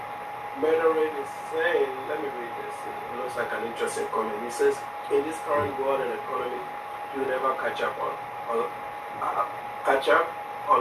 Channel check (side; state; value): both; identical; correlation 1.00